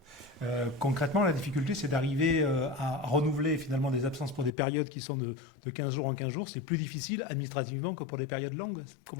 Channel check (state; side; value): drops out; right; at 4.5 s